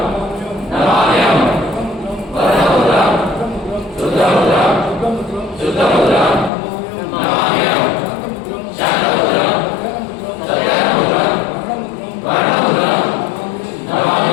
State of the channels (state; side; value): drops out; right; at 6.5 s